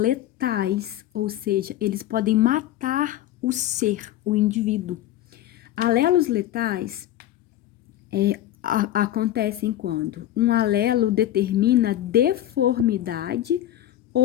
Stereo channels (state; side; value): quieter; right; 13.1 dB